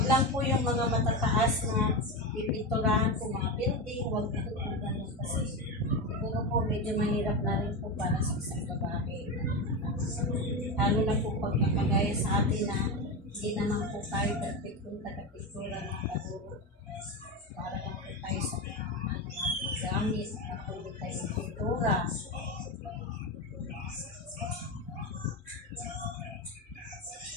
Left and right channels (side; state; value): both; normal; correlation 0.17